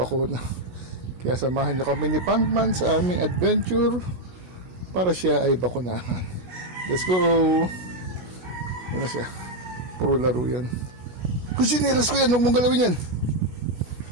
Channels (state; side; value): late; left; 16 ms